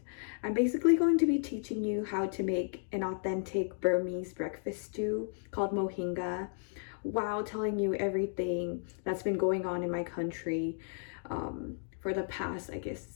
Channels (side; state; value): right; silent; 55 dB below the other